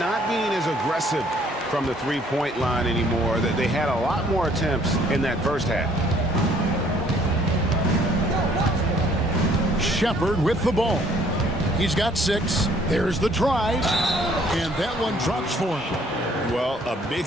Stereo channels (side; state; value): both; normal; correlation 0.61